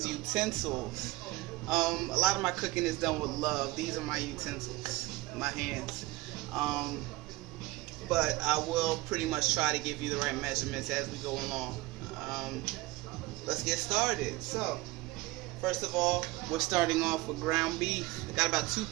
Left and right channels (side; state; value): left; quieter; 20.4 dB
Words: utensils, a lot of my cooking is done with love. These are my utensils, my hands. But I will pretty much try to give you the right measurements as we go along. Let's get started. So, first of all, we're starting off with ground beef. I got about 2